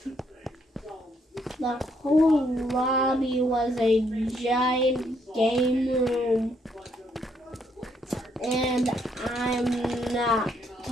The whole lobby was a giant game room. And I'm not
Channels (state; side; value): normal; both; correlation 0.72